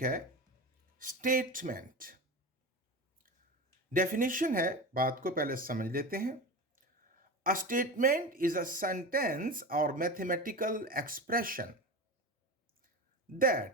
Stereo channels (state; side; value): normal; both; correlation 0.26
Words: है स्टेटमेंट। डेफिनेशन है, बात को पहले समझ लेते हैं। A statement is a sentence or mathematical expression